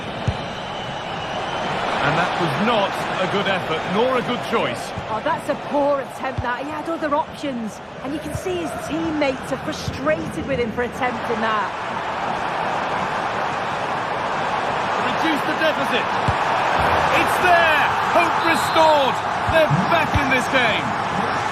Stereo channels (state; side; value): identical; both; correlation 1.00